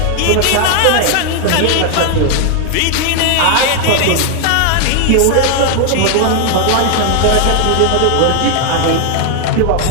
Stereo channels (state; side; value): different; both; correlation 0.00